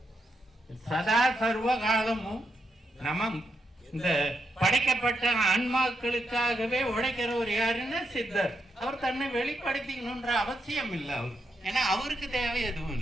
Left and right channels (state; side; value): normal; both; correlation 0.82